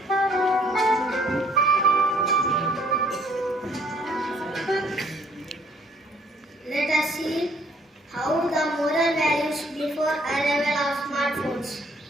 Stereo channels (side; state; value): both; normal; correlation 0.62